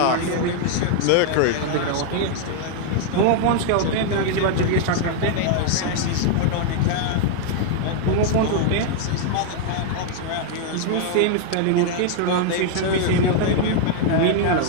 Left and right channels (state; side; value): different; both; correlation 0.00